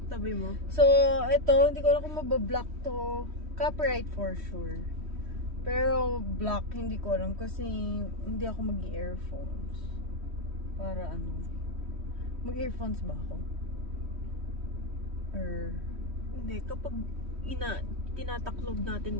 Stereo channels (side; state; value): left; late; 3.1 ms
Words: tabi mo. So, ito, hindi ko alam kung mabablock to. Copyright for sure. Pero, block, hindi ko alam kasi hindi ako mag-earphones. Para ano? Mag-earphones ba ako? Or... Hindi, kapag tinataklob natin